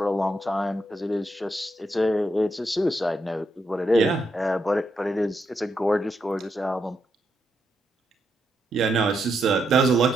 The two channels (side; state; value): both; normal; correlation 0.81